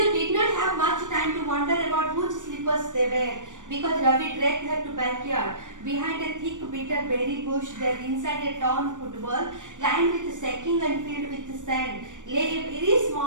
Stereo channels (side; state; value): left; late; 0.87 ms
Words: did not have much time to wonder about which slippers they were, because Ravi dragged her to backyard. Behind a thick bitter berry bush there, inside a torn football lined with sacking and filled with sand, lay a very